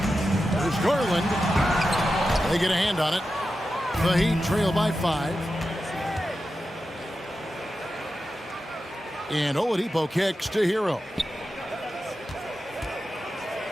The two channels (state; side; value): normal; both; correlation 0.91